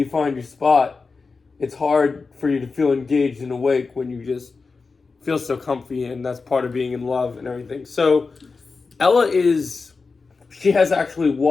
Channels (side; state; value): right; quieter; 4.4 dB